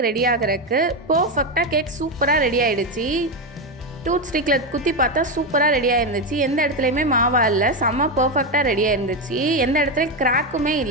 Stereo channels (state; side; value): normal; both; correlation 0.10